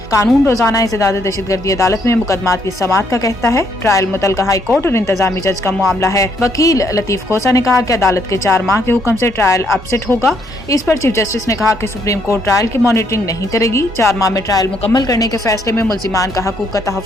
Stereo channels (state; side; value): normal; both; correlation 0.71